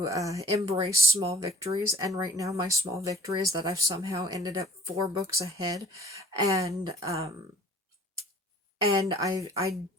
embrace small victories, and right now my small victory is that I've somehow ended up 4 books ahead, and I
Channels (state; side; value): normal; both; correlation 0.51